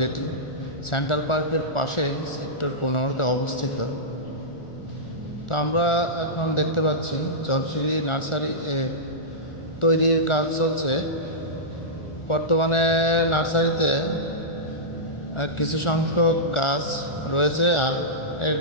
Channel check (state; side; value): late; right; 1.4 ms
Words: সেন্ট্রাল পার্কের পাশে সেক্টর 15-তে অবস্থিত। তো আমরা এখন দেখতে পাচ্ছি জলসিরি নার্সারি তৈরির কাজ চলছে। বর্তমানে নার্সারিতে কিছু সংখ্যক গাছ রয়েছে, আর এর